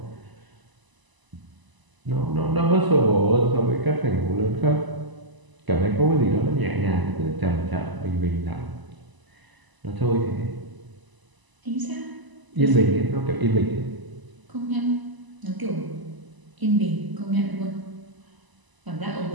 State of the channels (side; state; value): left; late; 1.0 ms